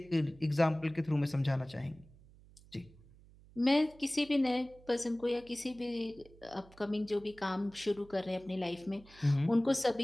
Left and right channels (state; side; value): noise; right; hum, 24 dB below the sound